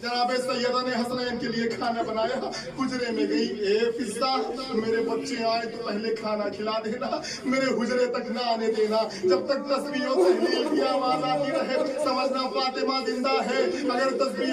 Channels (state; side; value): identical; both; correlation 1.00